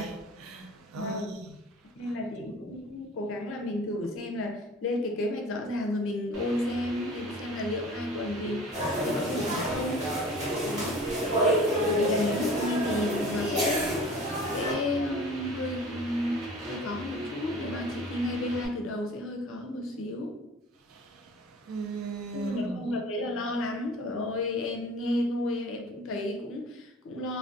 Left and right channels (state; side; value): normal; both; correlation 0.44